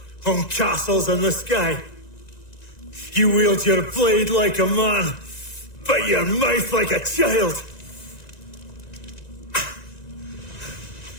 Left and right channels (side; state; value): right; late; 1.9 ms